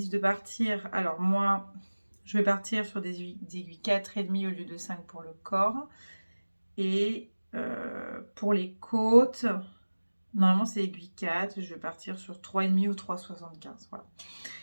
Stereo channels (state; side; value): inverted; both; correlation -1.00